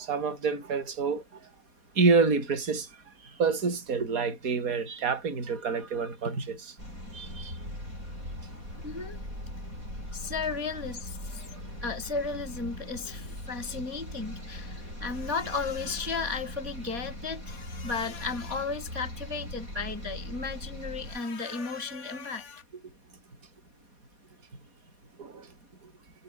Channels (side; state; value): left; late; 4.2 ms